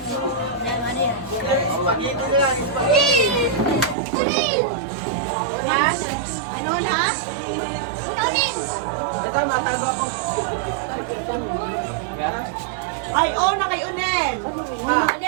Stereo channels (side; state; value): left; drops out; at 4.0 s